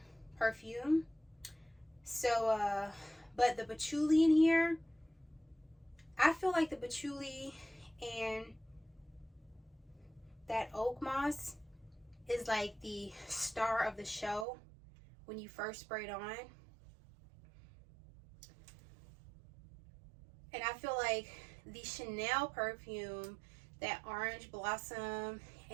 perfume. So but the patchouli in here, I feel like the patchouli and that Oakmoss is like the star of the show when you first spray it on. And I feel like the Chanel perfume, that orange blossom,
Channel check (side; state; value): left; drops out; at 14.5 s